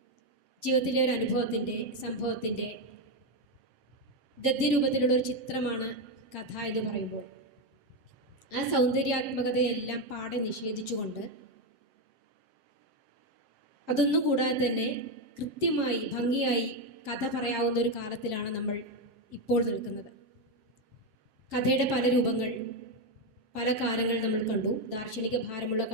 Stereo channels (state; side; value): late; left; 7.6 ms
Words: ജീവിതത്തിലെ ഒരു അനുഭവത്തിൻ്റെ, സംഭവത്തിൻ്റെ ഗദ്യരൂപത്തിലുള്ള ഒരു ചിത്രമാണ് കഥ എന്ന് പറയുമ്പോൾ, ആ സൗന്ദര്യാത്മകതയെല്ലാം പാടെ നിഷേധിച്ചുകൊണ്ട്, അതൊന്നും കൂടാതെ തന്നെ കൃത്യമായി ഭംഗിയായി കഥ പറയാവുന്ന ഒരു കാലത്തിലാണ് നമ്മൾ ഇപ്പോൾ നിൽക്കുന്നത്. കഥയുടെ പല രൂപങ്ങൾ, പല കാലങ്ങൾ നമ്മൾ കണ്ടു. ദാർശനിക ഭാരമുള്ള